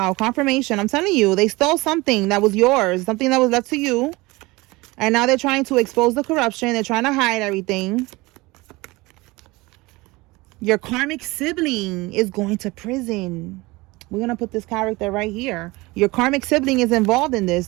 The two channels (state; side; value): quieter; left; 22.3 dB